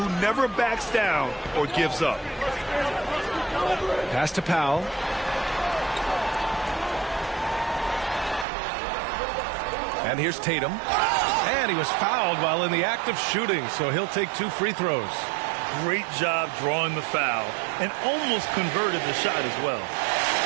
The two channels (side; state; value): left; drops out; at 8.5 s